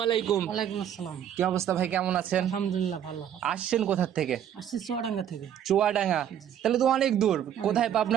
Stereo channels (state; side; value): quieter; left; 9.9 dB